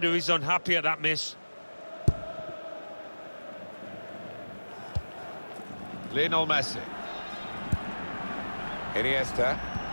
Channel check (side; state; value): both; inverted; correlation -1.00